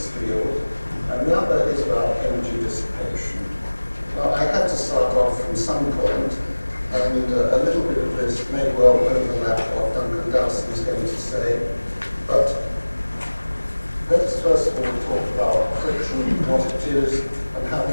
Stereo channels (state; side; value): inverted; both; correlation -1.00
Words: field, and the other is about energy dissipation. Now, I had to start off from some point, and a little bit of this may well overlap what Duncan Dowson is going to say, but let's first of all talk about friction, what it is, and how